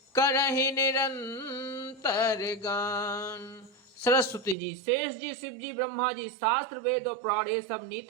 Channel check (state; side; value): drops out; left; at 4.5 s